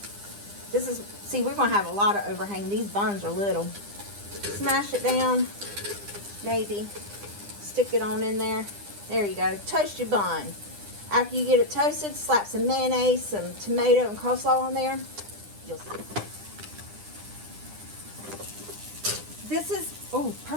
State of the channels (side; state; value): left; late; 9.9 ms